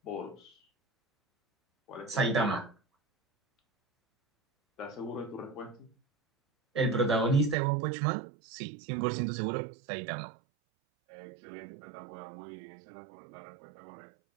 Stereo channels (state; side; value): drops out; left; at 7.6 s